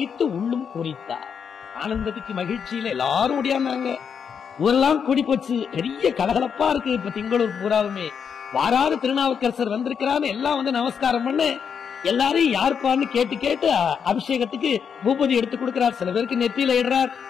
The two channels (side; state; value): right; quieter; 7.0 dB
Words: உள்ளும் பூரித்தார். ஆனந்தத்துக்கு மகிழ்ச்சியில எல்லாரும் ஓடியாந்தாங்க. ஊரெல்லாம் கூடி போச்சு. பெரிய கலகலப்பா இருக்கு. இப்ப திங்களூர் பூராவுமே வாராறு திருநாவுக்கரசர் வந்திருக்கிறான்னு எல்லாம் வந்து நமஸ்காரம் பண்ண எல்லாரையும் யாருப்பான்னு கேட்டு கேட்டு அபிஷேகத்துக்கு பூபதி எடுத்து கொடுக்கிறார். சில பேருக்கு நெத்தியில இடுறார்,